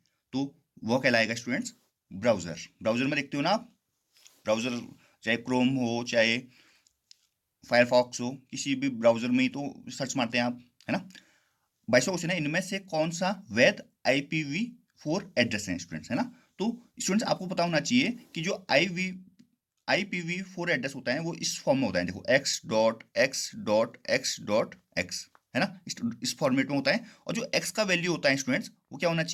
तो वह कहलाएगा स्टूडेंट्स ब्राउजर। ब्राउजर में देखते हो ना आप, ब्राउजर चाहे क्रोम हो चाहे फायरफॉक्स हो, किसी भी ब्राउजर में ही तो सर्च मारते हैं आप, है ना। 22वां क्वेश्चन है, इनमें से कौन सा वैध IPv4 एड्रेस है स्टूडेंट्स, है ना। तो स्टूडेंट्स आपको पता होना चाहिए कि जो IPv4 एड्रेस होता है वो इस फॉर्म में होता है, देखो x.x.x.x, है ना, इस फॉर्मेट में होता है। और जो x का वैल्यू होता है स्टूडेंट्स, वो क्या होना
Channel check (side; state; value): both; identical; correlation 1.00